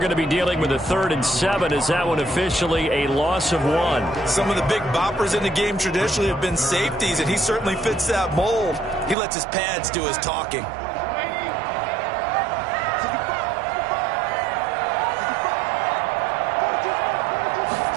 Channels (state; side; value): drops out; left; at 9.2 s